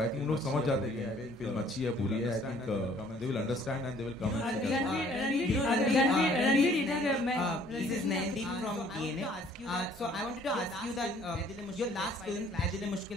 थिंक उन लोग समझ जाते हैं कि फिल्म अच्छी है बुरी है, I think they will understand and they will come and Ranveer इधर मैं This is Nandip from DNA. So I wanted to ask you that your last film, Adil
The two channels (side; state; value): both; normal; correlation 0.58